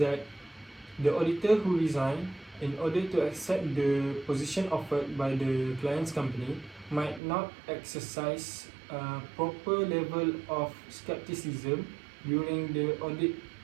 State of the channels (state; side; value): drops out; left; at 7.2 s